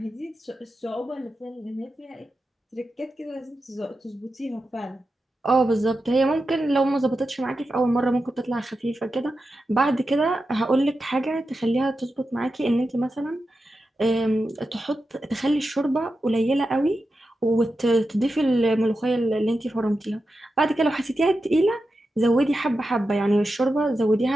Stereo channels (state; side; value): normal; both; correlation 0.90